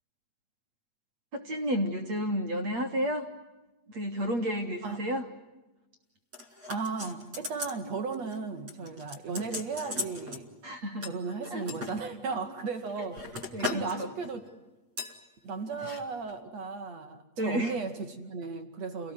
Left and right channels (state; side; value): late; left; 8.4 ms